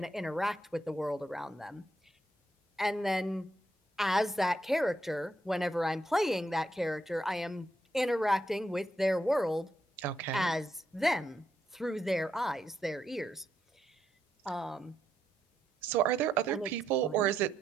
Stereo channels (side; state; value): both; normal; correlation 0.79